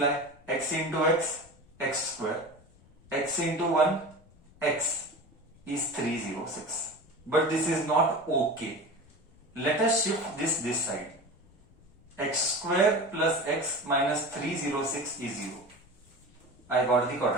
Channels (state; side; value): noise; left; rumble, 27 dB below the sound